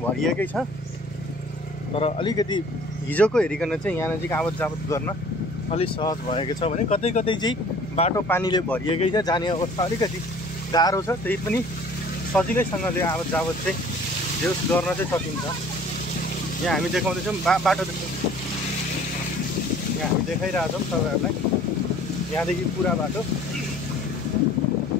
छ, तर अलिकति हिजोको हेरिकन चाहिँ यहाँ नजिक आवत जावत गर्न अलिक सहज भएको छ भने कतै कतै चाहिँ बाटो पानीले भरिएकै छ, जाने अवस्था अलिकति गाह्रो छ। त्यही पनि सजिलैसँगले आवत जावत चाहिँ जेस गर्न चाहिँ सकिन्छ। यहाँ हामी देखाउँदैछौँ बाटो यहाँ हामी देखाइरहेछौँ तपाईँहरूलाई। यहाँदेखि पुरा बाटो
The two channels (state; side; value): normal; both; correlation 0.51